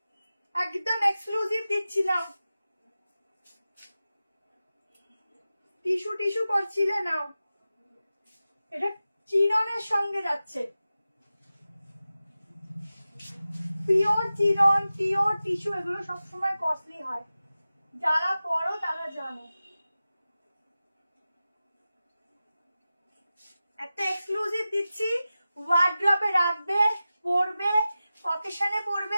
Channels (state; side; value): inverted; both; correlation -0.94